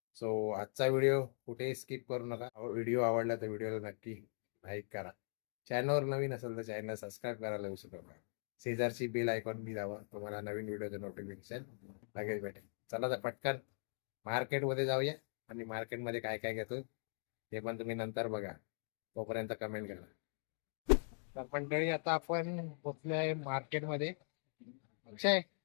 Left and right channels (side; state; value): right; silent; digital silence